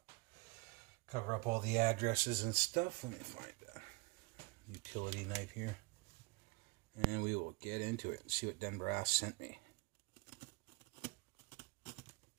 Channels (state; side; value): quieter; left; 26.9 dB